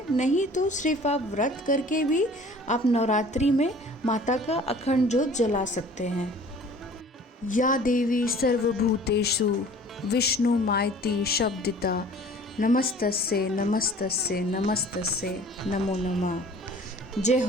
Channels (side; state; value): both; normal; correlation 0.48